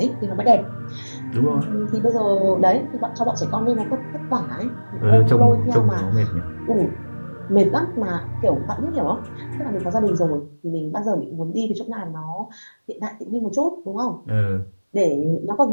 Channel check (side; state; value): both; inverted; correlation -1.00